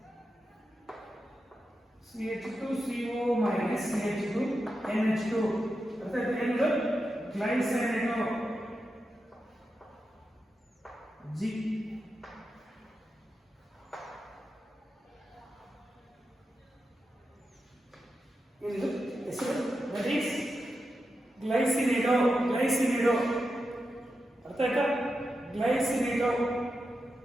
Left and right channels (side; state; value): both; normal; correlation 0.89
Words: CH2CO minus CH2NH2. ಅರ್ಥ ಆಯ್ತಾ? ಏನು? ಗ್ಲೈಸಿನೇಟೋ G. ಇದು ಹೆಸರು. That is glycinato. ಅರ್ಥ ಆಯ್ತಾ? ಗ್ಲೈಸಿನೇಟೋ